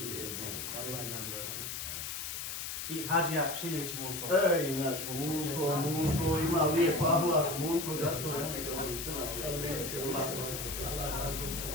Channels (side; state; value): left; noise; hiss, 5 dB below the sound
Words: I Hadžija Šiljević Mulko. Ej, naš Mulko ima lijep ahlak, Mulko, zato ja njega volim crna.